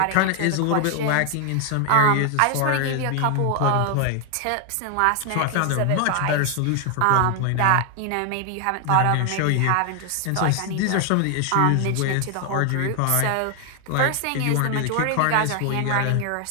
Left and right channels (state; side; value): different; both; correlation 0.00